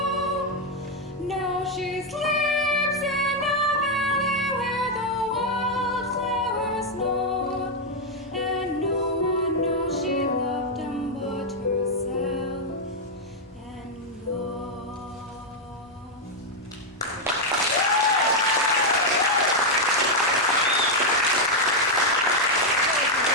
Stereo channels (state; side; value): normal; both; correlation 0.01